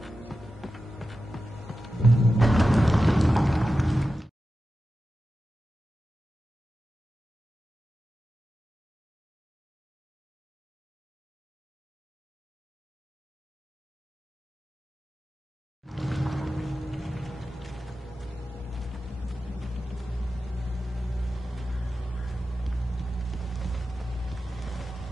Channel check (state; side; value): normal; both; correlation 0.92